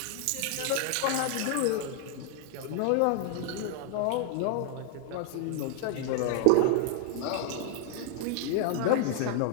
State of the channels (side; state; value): both; different; correlation -0.01